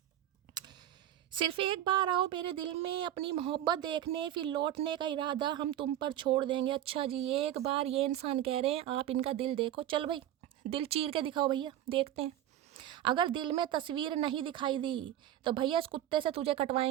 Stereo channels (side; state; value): left; quieter; 12.1 dB